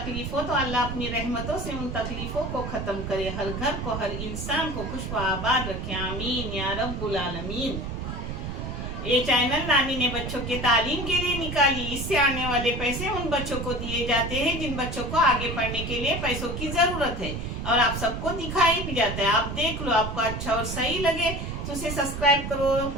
हो तो अल्लाह अपनी रहमतों से उन तकलीफों को खत्म करे, हर घर को हर इंसान को खुश व आबाद रखे। आमीन या रब्बुल आलमीन। ये चैनल नानी ने बच्चों के तालीम के लिए निकाली। इससे आने वाले पैसे उन बच्चों को दिए जाते हैं जिन बच्चों को आगे पढ़ने के लिए पैसों की जरूरत है, और आप सबको दिखाई भी जाता है। आप देख लो, आपको अच्छा और सही लगे तो उसे सब्सक्राइब करो,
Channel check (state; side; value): noise; right; rumble, 5 dB below the sound